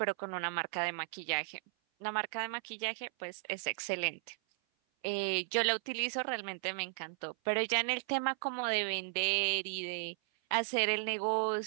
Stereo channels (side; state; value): left; silent; 54 dB below the other